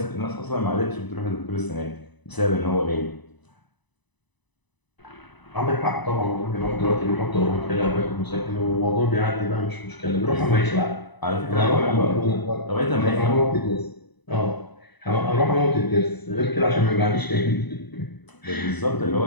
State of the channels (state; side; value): late; right; 1.0 ms